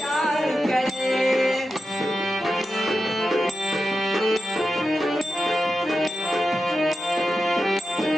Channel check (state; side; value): normal; both; correlation 0.90